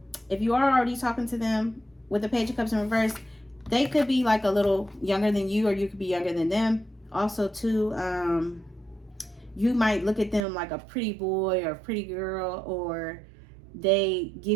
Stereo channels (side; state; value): left; drops out; at 10.5 s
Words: If you are already talking to them with the Page of Cups in reverse, they could be like a little younger than you, or you could be younger than them. Also, too, you might look at them like a pretty boy or a pretty girl, or they